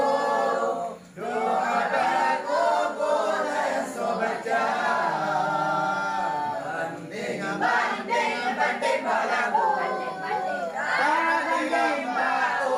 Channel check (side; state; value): both; identical; correlation 1.00